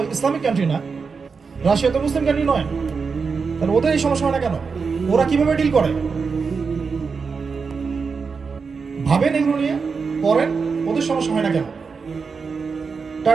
ইসলামিক কান্ট্রি না, রাশিয়া তো মুসলিম কান্ট্রি নয়, তাহলে ওদের এই সমস্যা হয় না কেন? ওরা কিভাবে ডিল করে ভাবেন, এগুলো নিয়ে পড়েন। ওদের সমস্যা হয় না কেন?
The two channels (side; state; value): left; quieter; 5.2 dB